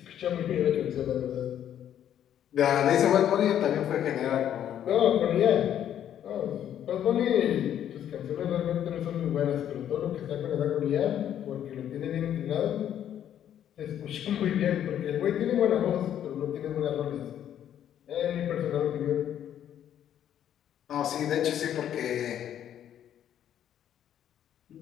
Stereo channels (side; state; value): right; quieter; 10.3 dB